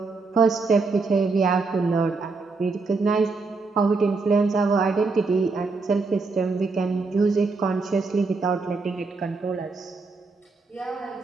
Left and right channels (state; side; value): quieter; left; 4.0 dB